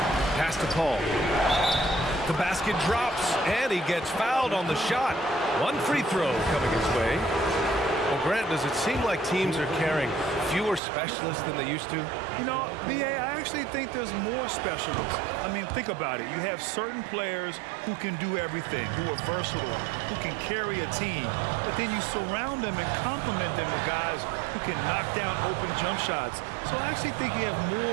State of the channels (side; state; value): left; drops out; at 10.8 s